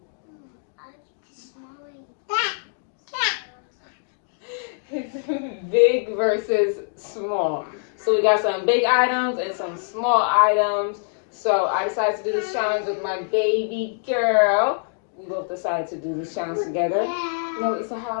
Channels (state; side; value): silent; right; digital silence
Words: It's big versus small. So we got some big items and some small items. So I decided to do this challenge with my baby girl. We both decided to do this challenge together. You know, it's a